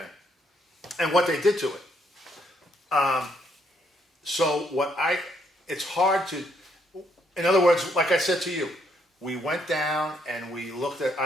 And what they did to it. So it's hard to, in other words, like I said to you, we went down and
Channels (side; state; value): both; normal; correlation 0.72